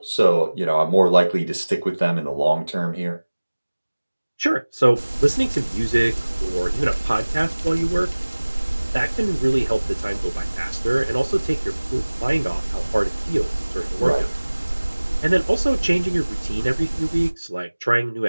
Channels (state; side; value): inverted; both; correlation -1.00